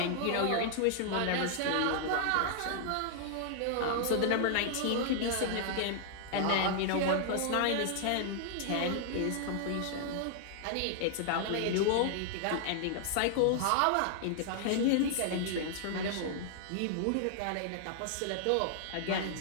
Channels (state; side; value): different; both; correlation -0.01